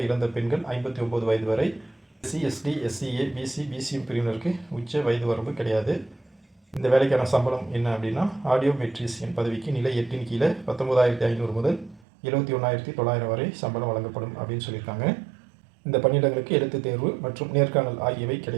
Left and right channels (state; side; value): drops out; left; at 12.1 s